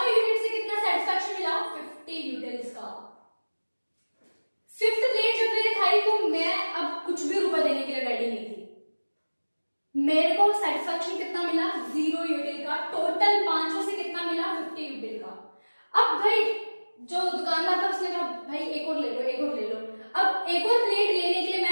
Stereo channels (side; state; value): both; inverted; correlation -1.00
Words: यूनिट से कितना सेटिस्फैक्शन मिला? 50 यूटिल्स का। फिफ्थ प्लेट जब मैंने खाई तो मैं अब कुछ भी रुपए देने के लिए रेडी नहीं थी। मेरे को सेटिस्फैक्शन कितना मिला? 0 यूटिल का। टोटल पांचों से कितना मिला? 50 यूटिल का। अब भाई जो दुकानदार था उसने कहा भाई एक और ले लो, एक और ले लो। अब एक और प्लेट लेने के लिए